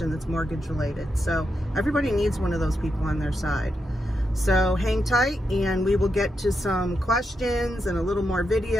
that's mortgage related. So everybody needs one of those people on their side. So hang tight and we will get to some questions and a little more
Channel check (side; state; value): both; normal; correlation 0.85